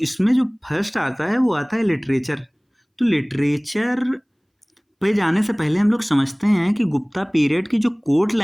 जो फर्स्ट आता है वो आता है लिटरेचर। तो लिटरेचर पे जाने से पहले हम लोग समझते हैं कि गुप्ता पीरियड की जो कोर्ट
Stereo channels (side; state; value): both; identical; correlation 1.00